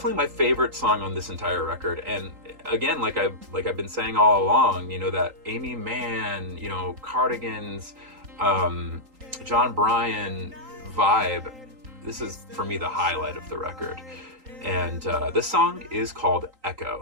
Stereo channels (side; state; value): left; late; 3.8 ms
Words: my favorite song on this entire record, and again, like I've been saying all along, you know, that Amy Mann, you know, Cardigans, John Bryan vibe. This is for me the highlight of the record, and this song is called